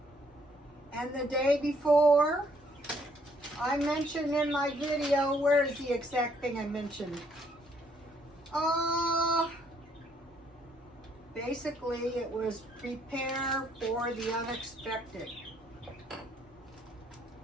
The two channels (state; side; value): normal; both; correlation 0.67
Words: and the day before, I mentioned in my video, where is the exact thing I mentioned? Basically it was prepare for the unexpected.